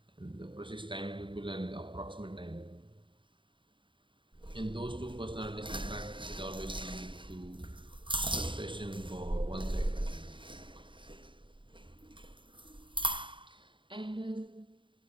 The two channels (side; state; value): left; late; 0.24 ms